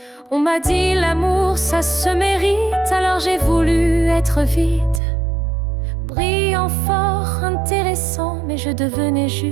On m'a dit l'amour ça se mérite, alors j'ai voulu être vide, brillant, fort, intéressant, mais je devenais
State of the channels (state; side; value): drops out; left; at 5.0 s